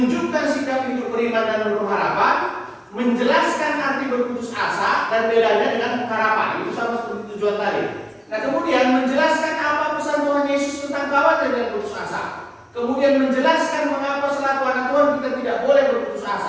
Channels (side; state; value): both; identical; correlation 1.00